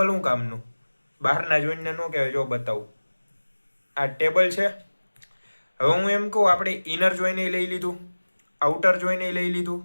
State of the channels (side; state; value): both; inverted; correlation -1.00